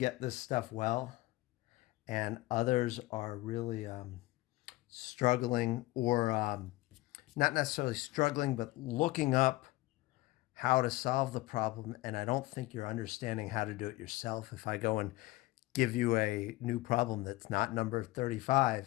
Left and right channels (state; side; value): quieter; right; 19.4 dB